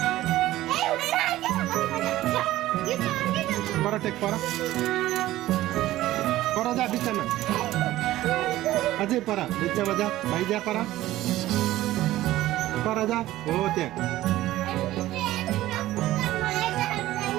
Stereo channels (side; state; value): left; quieter; 15.5 dB